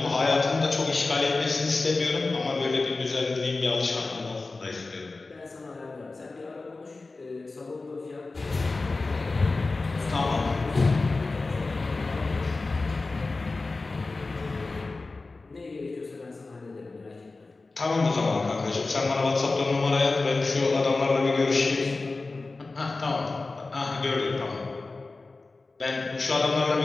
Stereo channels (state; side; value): quieter; right; 3.6 dB